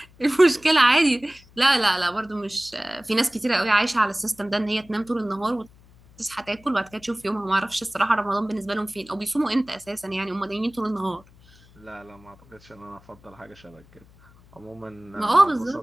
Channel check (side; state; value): left; noise; hum, 26 dB below the sound